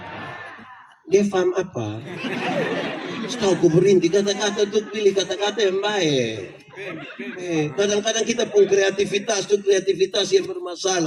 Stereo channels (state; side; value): identical; both; correlation 1.00